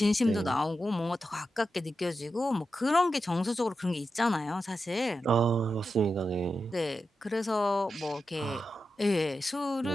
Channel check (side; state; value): both; normal; correlation 0.90